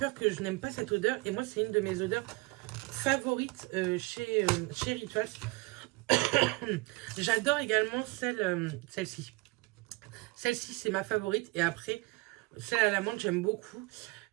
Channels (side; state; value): left; quieter; 23.9 dB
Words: que je n'aime pas cette odeur. Et moi, c'est une de mes odeurs favorites chez Rituals. J'adore également celle-ci. Celle-ci, c'est ma favorite. Et après, celle à la menthe, j'aime beaucoup.